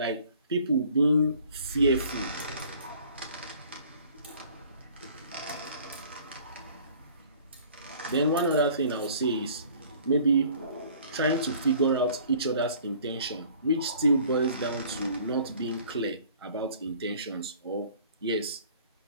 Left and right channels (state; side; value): inverted; both; correlation -0.52